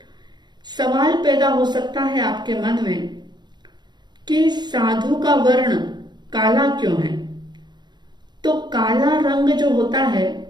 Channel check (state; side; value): late; left; 0.21 ms